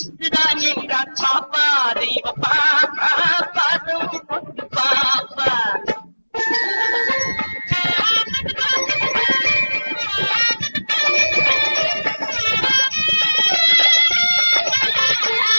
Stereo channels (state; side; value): inverted; both; correlation -1.00